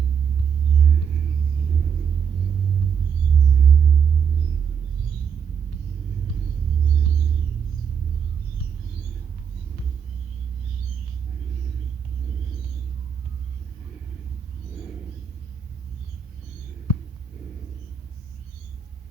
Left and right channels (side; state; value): left; quieter; 7.0 dB